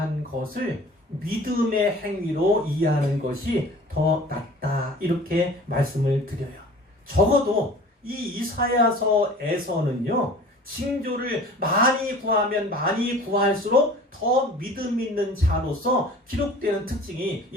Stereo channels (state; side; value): normal; both; correlation 0.44